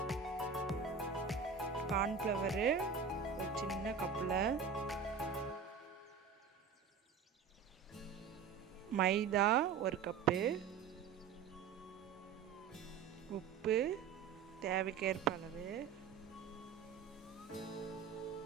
cornflour ஒரு சின்ன கப்பில், மைதா 1 கப்பு, உப்பு தேவைக்கேற்ப அளவு,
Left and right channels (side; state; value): left; quieter; 6.3 dB